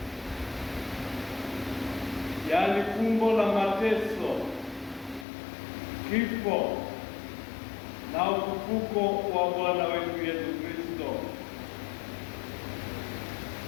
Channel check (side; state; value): right; drops out; at 5.2 s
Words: yaani fumbo la mateso, kifo na ufufuko wa Bwana wetu Yesu Kristo.